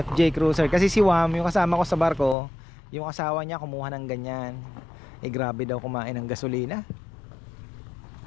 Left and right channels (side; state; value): right; drops out; at 2.4 s